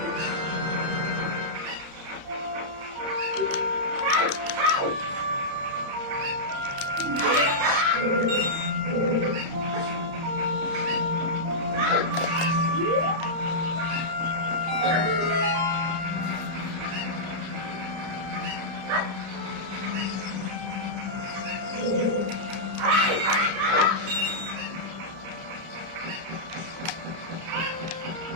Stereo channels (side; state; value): left; late; 30 ms